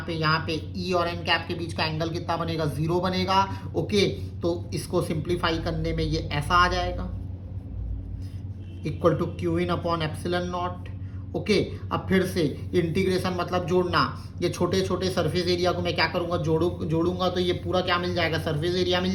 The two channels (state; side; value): identical; both; correlation 1.00